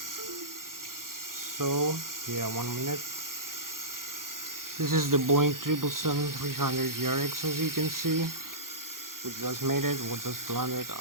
So yeah, 1 minute. This is the Boeing 777-300 ERX, as you can see. We just made it. We just landed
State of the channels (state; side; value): late; left; 0.91 ms